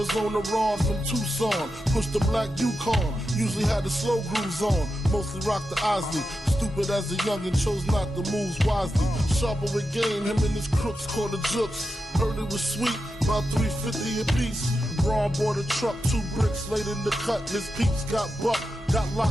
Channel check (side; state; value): both; normal; correlation 0.89